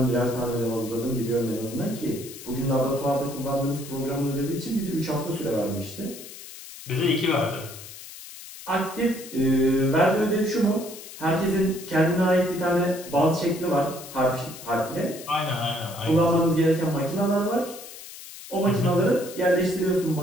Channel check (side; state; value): left; noise; hiss, 14 dB below the sound